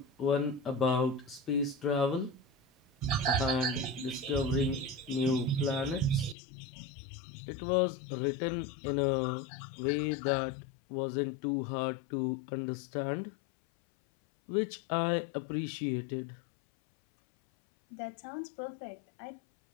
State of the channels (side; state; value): right; drops out; at 6.4 s